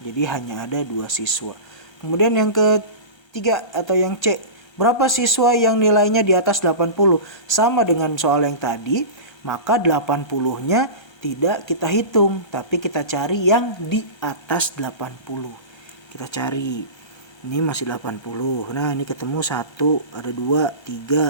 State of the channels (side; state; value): right; late; 1.3 ms